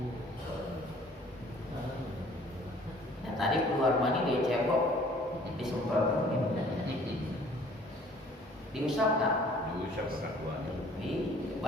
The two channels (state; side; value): normal; both; correlation 0.54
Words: Nah, tadi keluar mandi dia cebok, disemprot diusap enggak? Diusap pakai kuat.